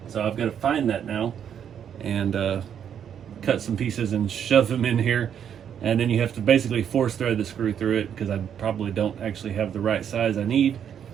So I've got to find that now and cut some pieces and shove them in here. And then you have to basically force thread the screw through it, because I probably don't actually have the right size I need.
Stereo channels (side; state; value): left; quieter; 8.7 dB